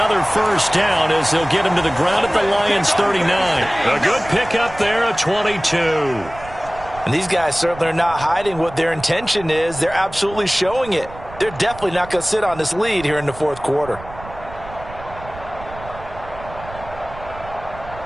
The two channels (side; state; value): right; noise; rumble, 16 dB below the sound